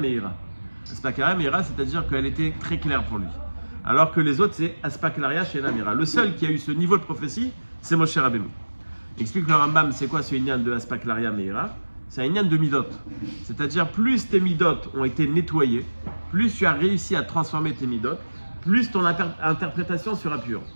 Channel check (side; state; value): both; inverted; correlation -1.00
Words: Aspaklaria Meira, c'est-à-dire qu'elle était très claire pour lui. Alors que les autres, c'est Aspaklaria Shena Meira. Le seul qui a eu ce niveau de prophétie, c'est Moshe Rabbeinu. Il explique le Rambam, c'est quoi ce inyan de Aspaklaria Meira? C'est un inyan de midot. C'est-à-dire, plus tes midot ont été nettoyés, plus tu as réussi à transformer tes midot, plus ton interprétation sera pure.